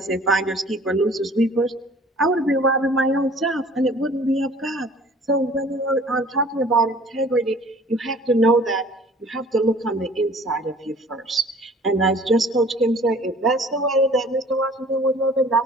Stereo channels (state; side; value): normal; both; correlation 0.50